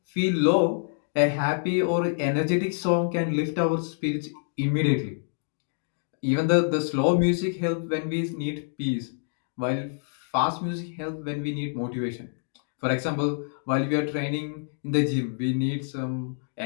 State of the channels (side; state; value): right; silent; digital silence